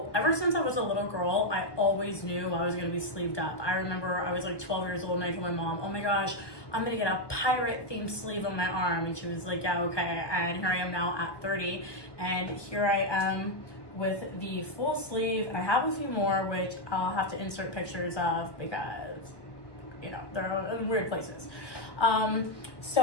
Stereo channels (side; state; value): right; late; 1.2 ms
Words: ever since I was a little girl, I always knew I was gonna be sleeved up. I remember I was like 12 years old and I told my mom, oh my gosh, I'm gonna get a pirate themed sleeve on my arm. And she was like, yeah, okay. And here I am now at 30 and here I am with the full sleeve. I have a few more which I'll have to insert pictures of because, you know, they're in weird places.